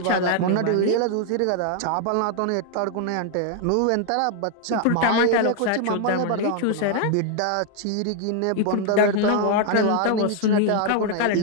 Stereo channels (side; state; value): both; different; correlation 0.00